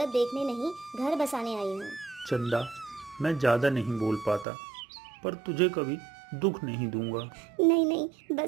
देखने नहीं, घर बसाने आई हूँ। चंदा, मैं ज़्यादा नहीं बोल पाता, पर तुझे कभी दुख नहीं दूंगा। नहीं नहीं,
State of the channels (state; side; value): drops out; left; at 4.5 s